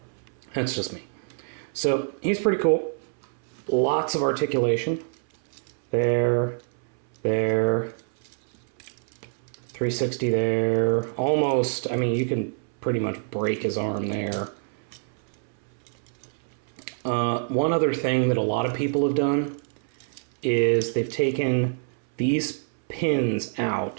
that's just me. So he's pretty cool. Lots of articulation. There, 360 there. Almost, I mean, you can pretty much break his arm there. One other thing that a lot of people have done is they've taken these pins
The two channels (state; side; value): silent; left; 61 dB below the other